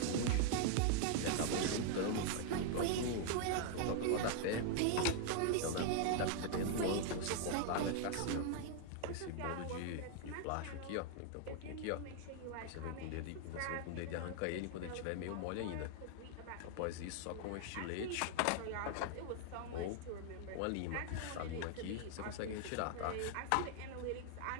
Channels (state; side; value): different; both; correlation 0.00